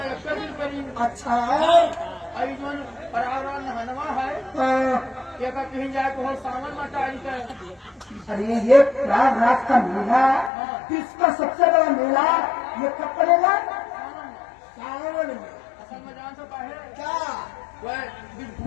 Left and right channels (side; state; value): right; drops out; at 10.5 s